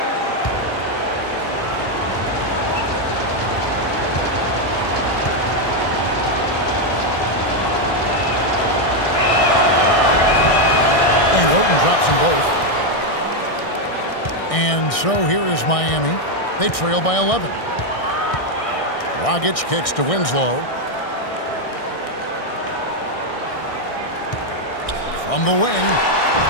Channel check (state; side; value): late; right; 1.6 ms